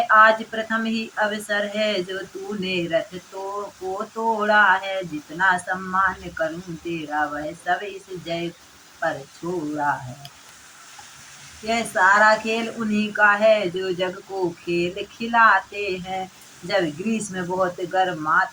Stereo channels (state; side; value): identical; both; correlation 1.00